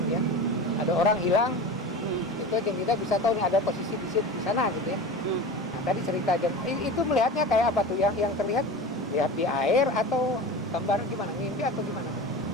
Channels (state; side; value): normal; both; correlation 0.31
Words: ya. Ada orang hilang, itu Jeng kita bisa tahu nih ada posisi di sana gitu ya. Nah, tadi cerita Jeng, itu melihatnya kayak apa tuh? Yang terlihat lihat di air atau gambar gimana? Mimpi atau gimana tuh?